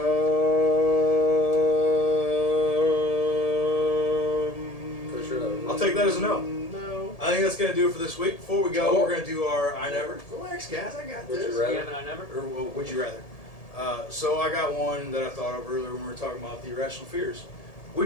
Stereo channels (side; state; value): right; late; 1.7 ms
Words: For sure. I'll take that as a no. No. I think that's going to do it for this week. Before we go, Oh. we're going to do our I Never. Relax, guys, I got Would this. you rather? Yeah, but I never. Or would you rather? So I got one that I thought of earlier when we were talking about the irrational fears.